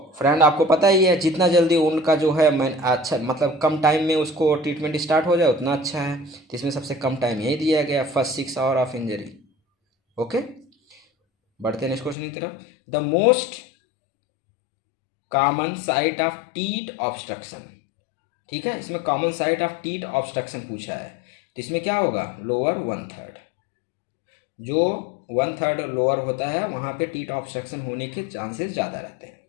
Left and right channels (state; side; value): drops out; right; at 12.2 s